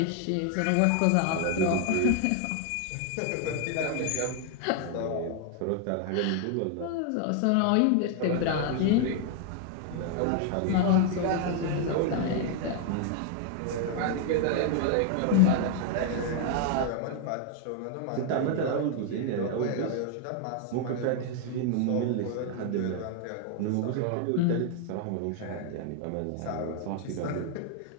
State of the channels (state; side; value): different; both; correlation 0.00